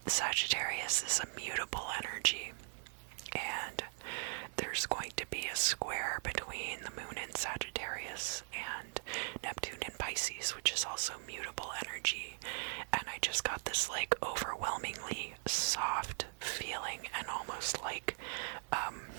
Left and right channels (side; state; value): left; silent; digital silence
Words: Sagittarius is a mutable energy, and there's going to be a square between the moon in Sagittarius and Neptune in Pisces, which is also mutable energy. And I just got this like overwhelmingly soft feeling, and almost like